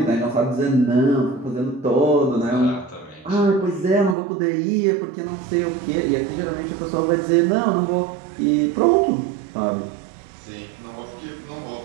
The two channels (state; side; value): drops out; left; at 4.2 s